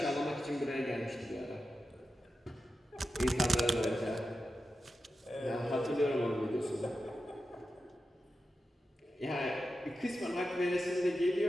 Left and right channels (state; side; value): normal; both; correlation 0.91